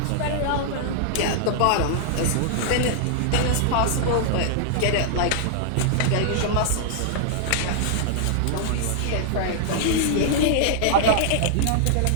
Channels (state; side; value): different; both; correlation -0.01